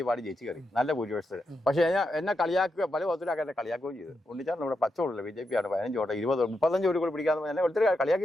ഈ പാടി ജയിച്ചു കയറി നല്ല ഭൂരിപക്ഷത്തിൽ. പക്ഷേ എന്നെ കളിയാക്കുക പല വിധത്തിലൊക്കെ എന്നെ കളിയാക്കുകയും ചെയ്തു. ഉണ്ണിച്ചാറിന് ഇവിടെ പച്ചവോട്ടില്ല, BJP ആണ് 15 വോട്ട് 20 35 വോട്ട് കൂടി പിടിക്കാതെ എന്നെ ഒത്തിരി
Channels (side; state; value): both; normal; correlation 0.85